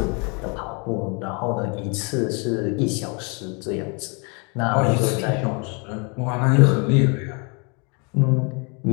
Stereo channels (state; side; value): quieter; right; 33.7 dB